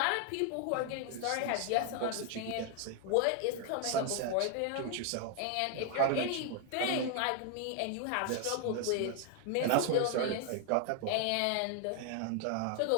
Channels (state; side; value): different; both; correlation 0.00